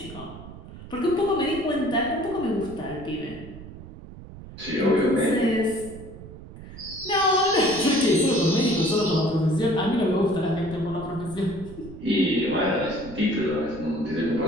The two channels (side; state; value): right; noise; rumble, 15 dB below the sound